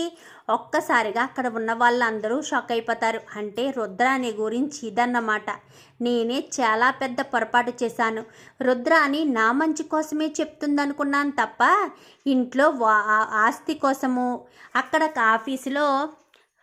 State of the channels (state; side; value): identical; both; correlation 1.00